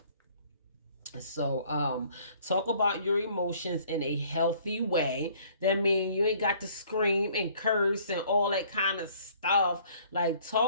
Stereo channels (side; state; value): both; inverted; correlation -0.58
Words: So talk about your emotions in a healthy way. That means you ain't got to scream and curse and all that kind of stuff. Like